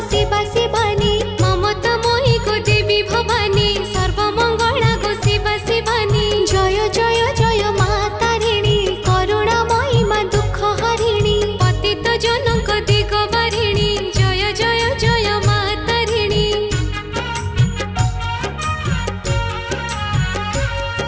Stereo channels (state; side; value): identical; both; correlation 1.00